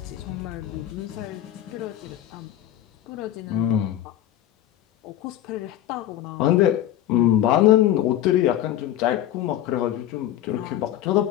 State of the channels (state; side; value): quieter; right; 12.5 dB